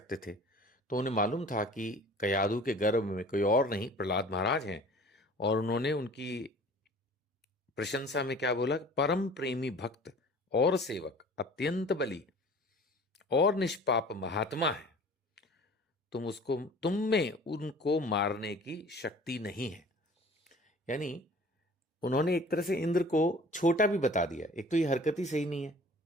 थे। तो उन्हें मालूम था कि कयाधु के गर्भ में कोई और नहीं, प्रहलाद महाराज हैं। और उन्होंने उनकी प्रशंसा में क्या बोला? परम प्रेमी भक्त और सेवक, अत्यंत बली और निष्पाप महात्मा है। तुम में उनको मारने की शक्ति नहीं है। यानी उन्होंने एक तरह से इंद्र को छोटा भी बता दिया। एक तो ये हरकत ही सही नहीं है,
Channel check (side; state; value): both; normal; correlation 0.46